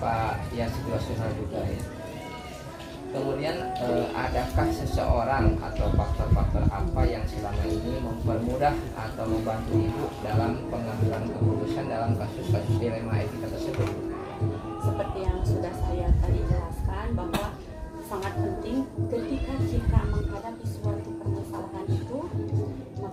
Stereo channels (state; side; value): identical; both; correlation 1.00